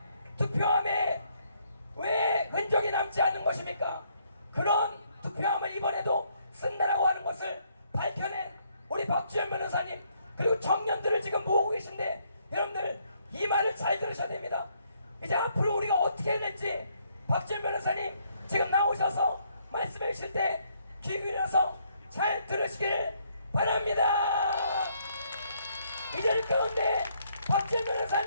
투표함에 왜 흔적이 남지 않은 것입니까? 그런 투표함을 이번에도 쓴다라고 하는 것을 밝혀낸 우리 박주현 변호사님, 그리고 청년들을 지금 모으고 계신데, 여러분들 이 말을 잘 들으셔야 됩니다. 이제 앞으로 우리가 어떻게 해야 될지 박지원 변호사님 지금 나오셔서 말씀해 주실 때 귀 기울여서 잘 들으시길 바랍니다. 이 자리 가운데 박지원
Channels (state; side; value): inverted; both; correlation -0.71